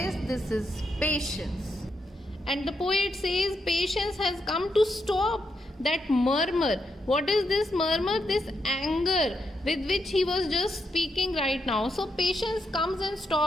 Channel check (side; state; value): both; normal; correlation 0.82